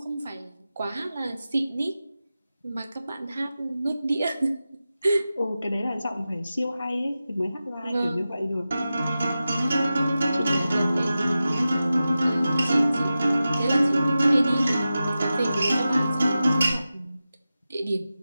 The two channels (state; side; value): inverted; both; correlation -0.93